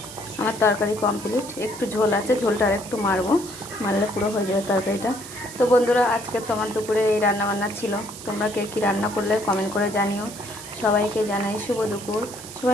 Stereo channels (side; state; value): right; noise; hiss, 14 dB below the sound